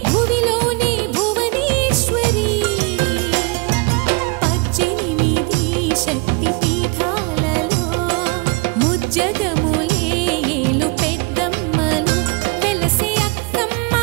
భువిలోనే భువనేశ్వరి 18 శక్తి పీఠాలలో ముజ్జగములే ఏలు పెద్దమ్మలు వెలసే అక్కమ్మ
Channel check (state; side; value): quieter; left; 29.2 dB